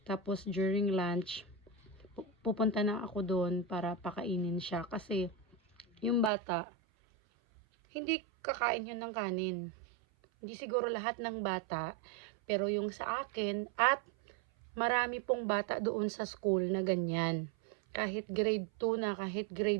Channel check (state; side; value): drops out; left; at 6.3 s